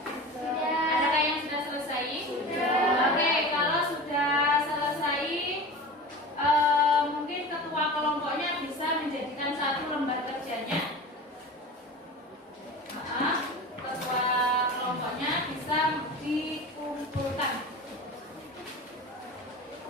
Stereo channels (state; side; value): normal; both; correlation 0.33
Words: Sudah. Adakah yang sudah selesai? Sudah. Oke, kalau sudah selesai, mungkin ketua kelompoknya bisa menjadikan 1 lembar kerjanya. Ketua kelompoknya bisa dikumpulkan.